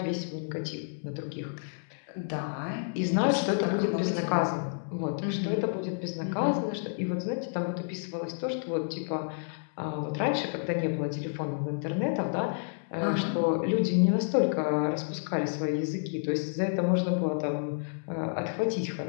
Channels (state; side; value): silent; right; digital silence